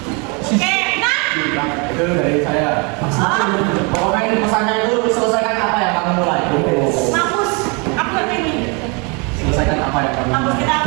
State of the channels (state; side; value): quieter; left; 31.7 dB